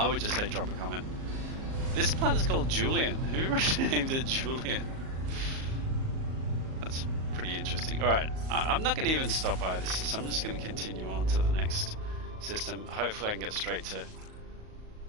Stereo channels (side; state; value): left; late; 38 ms